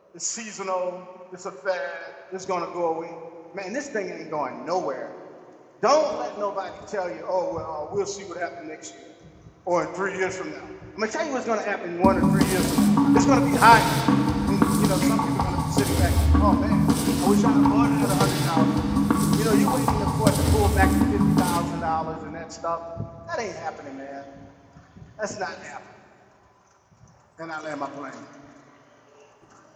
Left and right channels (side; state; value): both; identical; correlation 1.00